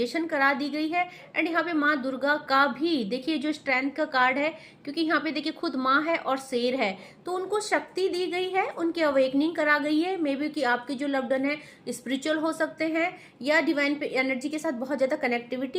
करा दी गई है। एंड यहाँ पे माँ दुर्गा का भी देखिए जो स्ट्रेंथ का कार्ड है, क्योंकि यहाँ पे देखिए खुद माँ है और शेर है, तो उनको शक्ति दी गई है, उनकी अवेकनिंग करा गई है। मे बी कि आपके जो लव्ड वन है स्पिरिचुअल हो सकते हैं, या डिवाइन पे एनर्जी के साथ बहुत ज्यादा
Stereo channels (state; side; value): identical; both; correlation 1.00